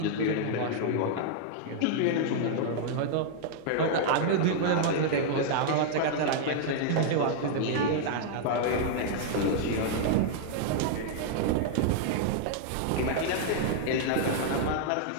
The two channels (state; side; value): different; both; correlation -0.01